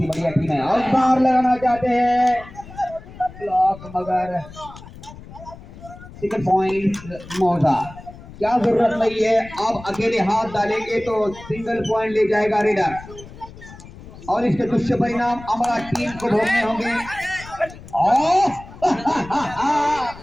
बढ़िया टीम है। और बार लगाना चाहते हैं ब्लॉक, मगर सिंगल पॉइंट मौजा। क्या जरूरत नहीं है, आप अकेले हाथ डालेंगे तो सिंगल पॉइंट ले जाएगा रेडर, और इसके दुष्परिणाम हमारा टीम को भोगने होंगे।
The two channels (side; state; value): left; noise; rumble, 17 dB below the sound